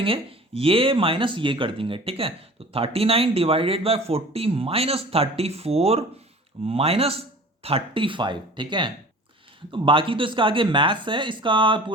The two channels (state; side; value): normal; both; correlation 0.43